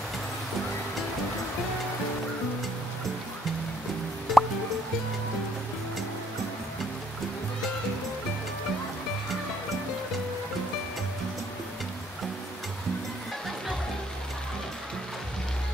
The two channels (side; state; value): both; normal; correlation 0.65